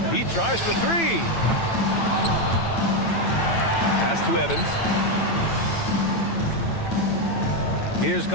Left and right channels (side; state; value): right; late; 8.9 ms